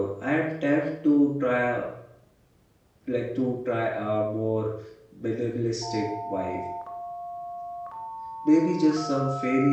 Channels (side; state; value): both; identical; correlation 1.00